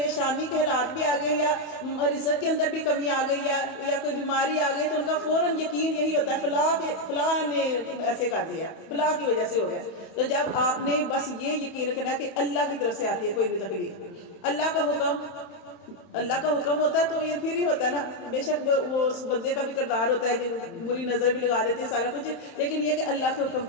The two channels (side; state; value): right; late; 31 ms